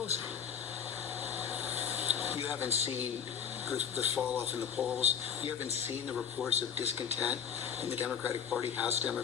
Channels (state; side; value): quieter; right; 7.8 dB